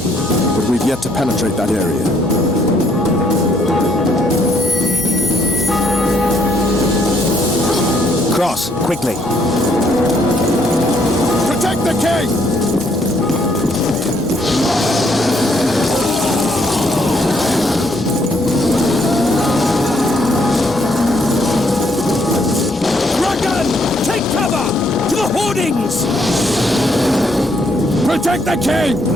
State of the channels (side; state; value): both; normal; correlation 0.70